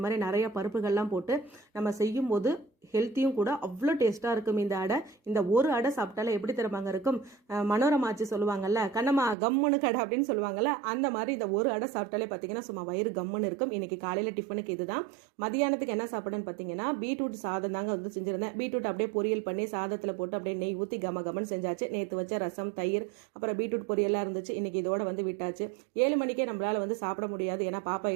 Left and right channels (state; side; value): drops out; left; at 9.3 s